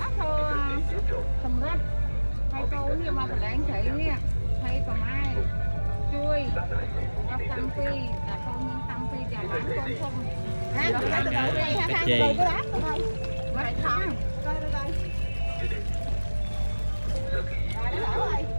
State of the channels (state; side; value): inverted; both; correlation -1.00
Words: thô sầm rách. Thấy cô nè mà phải đánh cây nè. Thấy còn ai chui nó tăng phi là con nhân tăng phi và bán con không ha từ đầu đây ha ha từ cái bát thôi vậy thôi coi đây đây rồi nó đổ rồi